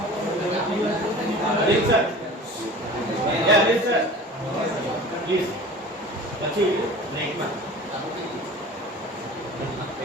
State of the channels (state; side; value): normal; both; correlation 0.40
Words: Sir. Yeah, please, sir. Please. Let's see. Next one.